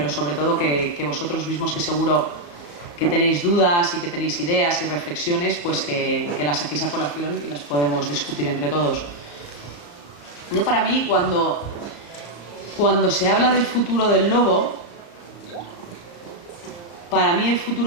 sobre todo que vosotros mismos, que seguro que tenéis dudas y que tenéis ideas y reflexiones, pues que las saquéis a colación y las podemos discutir entre todos. Yo, para mí, cuando se habla del futuro del lobo, para mí el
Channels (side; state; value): right; late; 35 ms